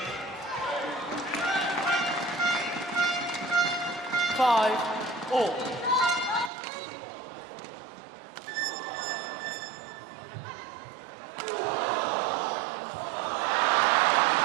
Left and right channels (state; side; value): drops out; left; at 6.5 s